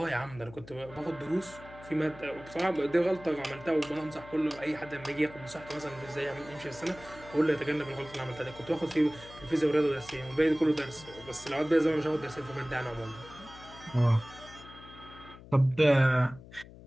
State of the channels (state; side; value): noise; left; hum, 18 dB below the sound